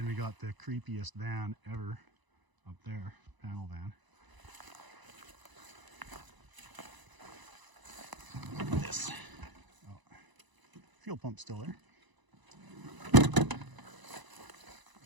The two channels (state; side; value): late; left; 1.0 ms